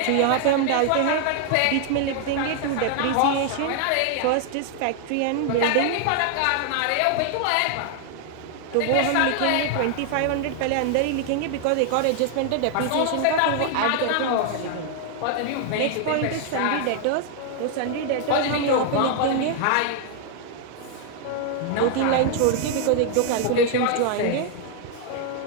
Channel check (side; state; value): both; different; correlation 0.00